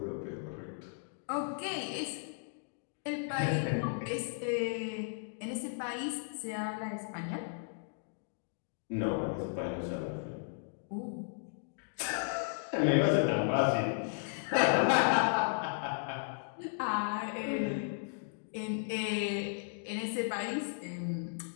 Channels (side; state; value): right; silent; digital silence